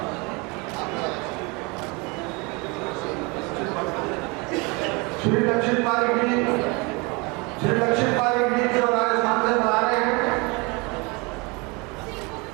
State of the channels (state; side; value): quieter; left; 28.1 dB